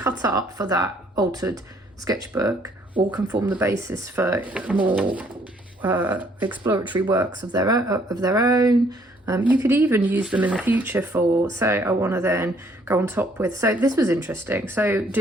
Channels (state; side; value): normal; both; correlation 0.64